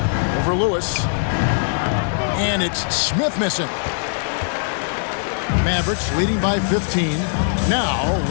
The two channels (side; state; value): right; silent; 55 dB below the other